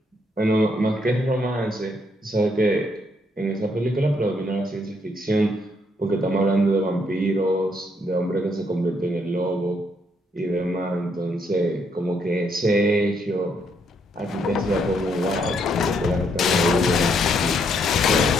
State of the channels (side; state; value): both; normal; correlation 0.73